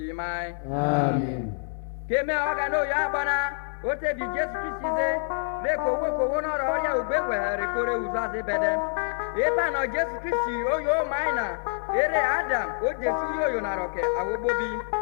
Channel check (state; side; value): silent; right; 60 dB below the other